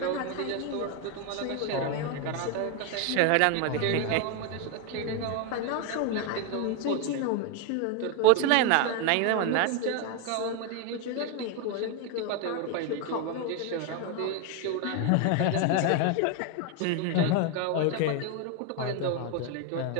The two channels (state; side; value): different; both; correlation 0.01